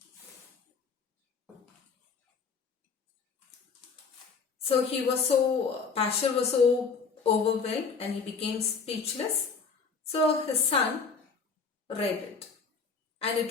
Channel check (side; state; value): right; quieter; 5.2 dB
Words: So Pasteur was so overwhelmed and he became speechless. So his son read it, and